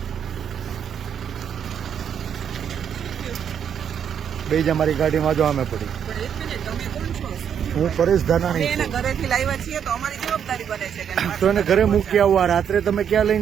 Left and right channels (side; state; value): left; quieter; 8.3 dB